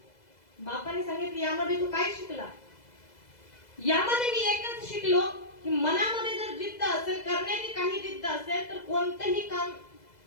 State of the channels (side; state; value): right; late; 2.0 ms